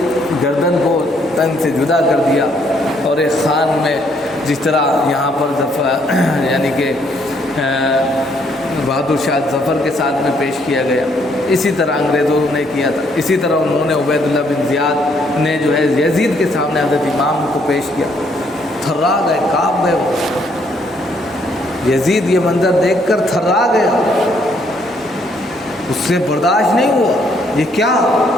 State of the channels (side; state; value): both; normal; correlation 0.69